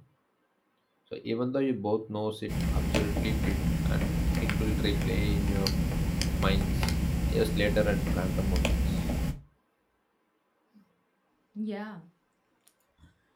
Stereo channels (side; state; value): both; identical; correlation 1.00